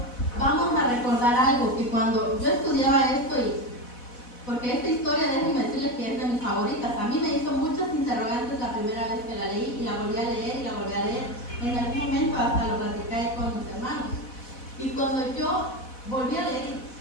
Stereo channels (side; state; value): right; late; 4.1 ms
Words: vamos a recordar algo, que cuando yo estudiaba esto, porque esta historia, déjenme decirles que es de mis favoritas, a mí me hizo muchas interrogantes la primera vez que la leí, y la volví a leer y la volví a leer. En algún momento hasta lo platicé con mis hermanos. Y cuando yo volví a leer,